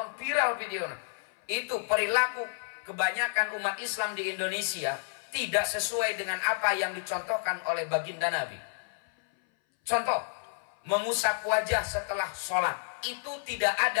viral video itu. Perilaku kebanyakan umat Islam di Indonesia tidak sesuai dengan apa yang dicontohkan oleh baginda Nabi. Contoh, mengusap wajah setelah sholat itu tidak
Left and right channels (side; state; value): right; silent; 58 dB below the other